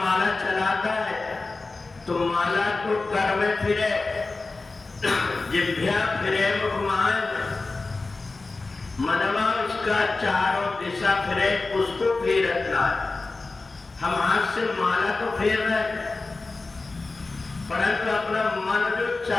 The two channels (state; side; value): quieter; right; 3.6 dB